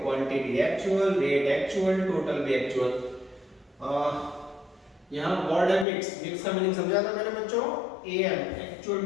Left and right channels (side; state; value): right; drops out; at 5.9 s